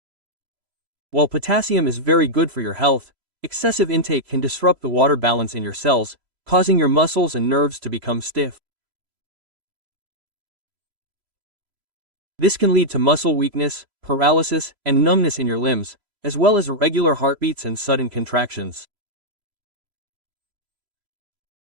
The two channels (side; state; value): left; late; 3.0 ms